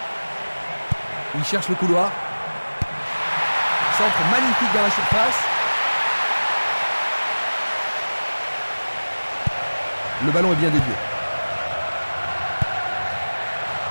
Il cherche le couloir. Centre magnifique dans la surface. Le ballon est bien dévié.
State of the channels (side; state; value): both; inverted; correlation -1.00